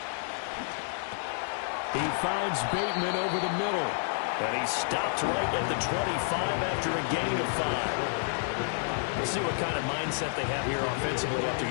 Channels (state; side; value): silent; right; digital silence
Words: He finds Bateman over the middle. And he stopped right at the 25 after a gain of 5. We'll see what kind of mindset they have here offensively after